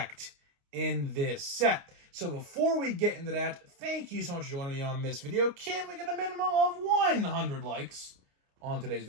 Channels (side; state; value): left; late; 29 ms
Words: in this set. So before we get into that, thank you so much for joining me on this video. Can we get a minimum of 100 likes on today's